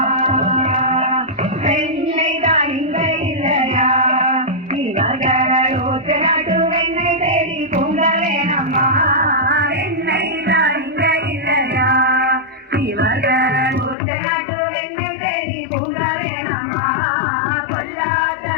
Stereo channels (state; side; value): drops out; right; at 14.0 s